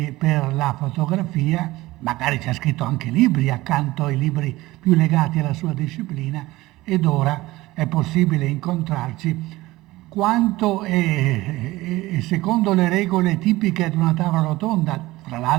per la fotografia. Magari ci ha scritto anche libri accanto ai libri più legati alla sua disciplina, ed ora è possibile incontrarci quanto è secondo le regole tipiche di una tavola rotonda, tra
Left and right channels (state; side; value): quieter; left; 18.7 dB